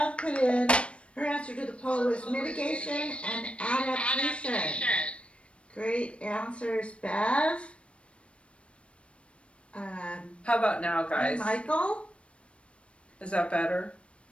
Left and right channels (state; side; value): late; right; 0.060 ms